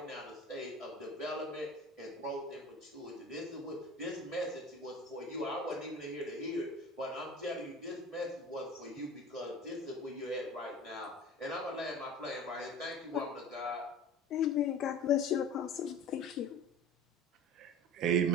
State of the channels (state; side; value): normal; both; correlation 0.38